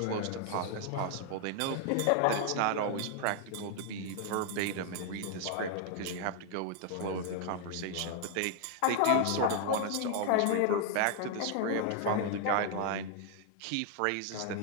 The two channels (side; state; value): both; different; correlation 0.00